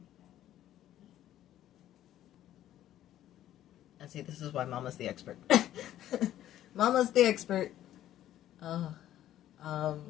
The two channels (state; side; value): quieter; right; 12.5 dB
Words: And see, this is why Mama's the expert. Mama's the expert. All